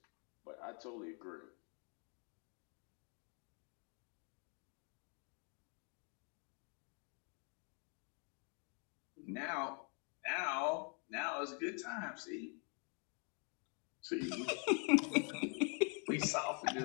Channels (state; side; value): quieter; right; 38.2 dB